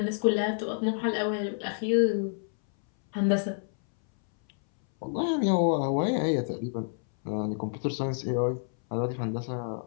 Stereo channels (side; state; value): right; silent; 59 dB below the other